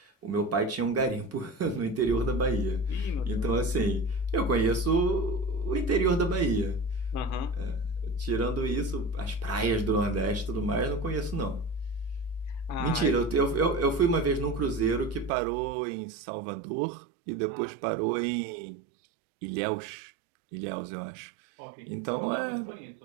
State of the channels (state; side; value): drops out; left; at 15.3 s